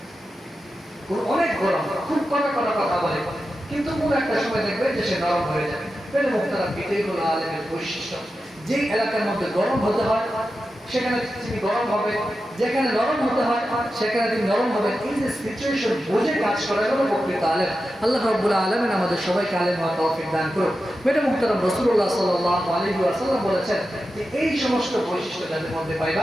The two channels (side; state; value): both; normal; correlation 0.91